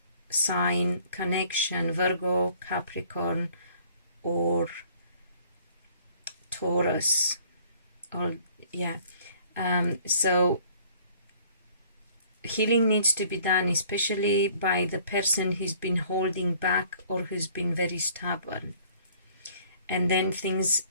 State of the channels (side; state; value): both; inverted; correlation -0.56